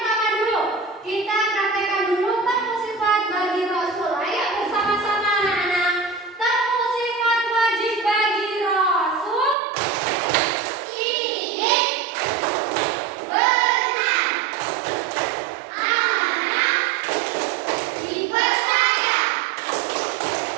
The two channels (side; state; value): left; drops out; at 9.6 s